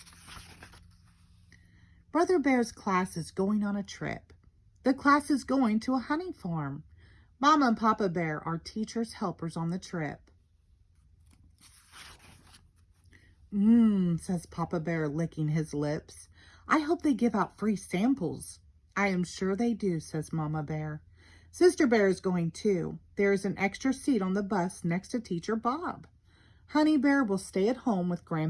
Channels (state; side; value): identical; both; correlation 1.00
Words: Brother Bear's class is going on a trip. The class is going to a honey farm. Mama and Papa Bear are teachers' helpers on the trip. Says Papa Bear, licking his lips. I hope they give out free samples. I am sure they do, says Mama Bear. Sister Bear is going too. There is an extra seat on the bus next to Teacher Bob. Honey Bear will stay at home with